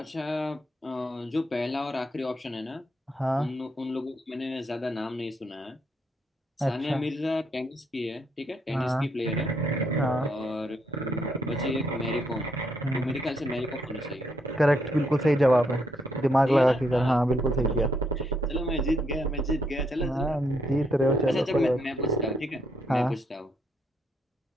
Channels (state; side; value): normal; both; correlation 0.76